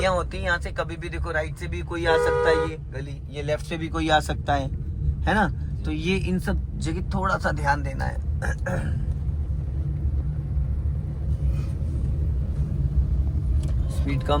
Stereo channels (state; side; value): identical; both; correlation 1.00